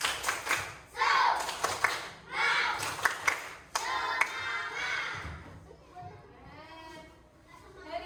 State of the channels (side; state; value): both; identical; correlation 1.00